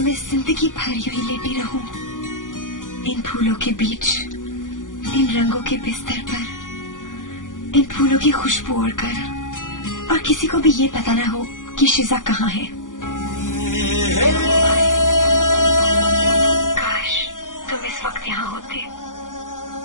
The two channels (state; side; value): late; right; 0.88 ms